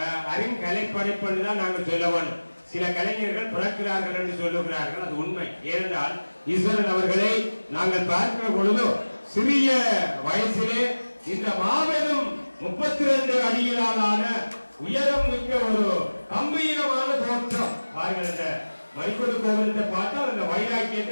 அருங்கலைப்படைப்பு தான் நாங்கள் சொல்ல வேண்டும். சில கலைஞர்கள் பிறக்கிறார்கள் என்று சொல்லுகிறார்கள், அது உண்மை. ஏனென்றால் ஈஸ்வரன் அவர்களை நாங்கள் பார்க்கிற பொழுது சிறிய வயசிலே இந்த மாபெரும் 32 அடியிலான உயரம் மிக்க ஒரு கம்பீரமான தோற்றம் பாருங்கள். இந்த மணிக்கூண்டு கோபுரத்தை பார்த்தால் அந்த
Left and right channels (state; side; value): inverted; both; correlation -1.00